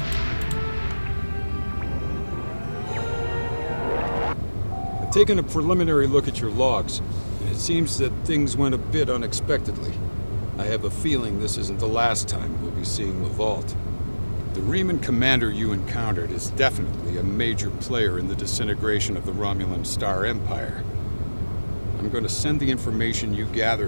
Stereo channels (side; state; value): both; inverted; correlation -1.00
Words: I've taken a preliminary look at your logs, and it seems that things went a bit unexpectedly. I have a feeling this isn't the last time we'll be seeing the vault. The Riemann commander you encountered is definitely a major player in the disintegration of the Romulan Star Empire. I'm going to send the information you